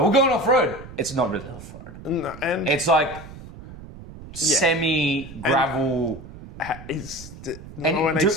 we're going off-road. It's not really off-road. No, and It's like semi-gravel. is the 918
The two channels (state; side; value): noise; right; rumble, 15 dB below the sound